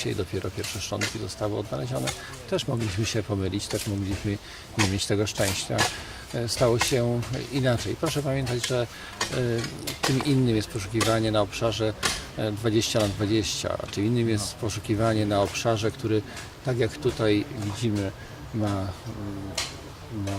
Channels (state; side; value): identical; both; correlation 1.00